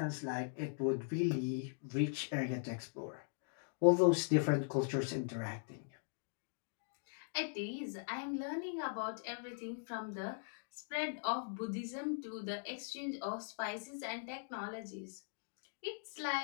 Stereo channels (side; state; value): right; silent; digital silence